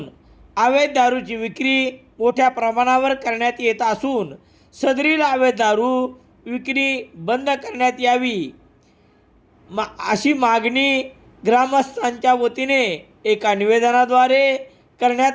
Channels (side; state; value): both; identical; correlation 1.00